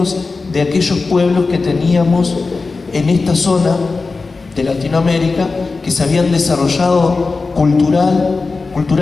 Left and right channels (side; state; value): right; quieter; 4.0 dB